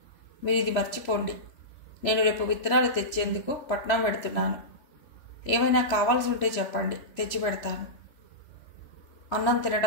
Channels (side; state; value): right; late; 3.1 ms